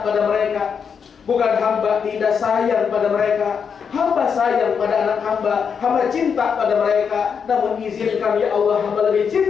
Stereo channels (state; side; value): quieter; right; 6.6 dB